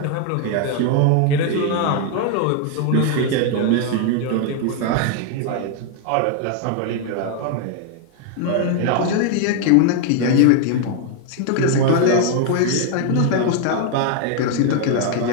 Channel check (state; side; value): different; both; correlation 0.00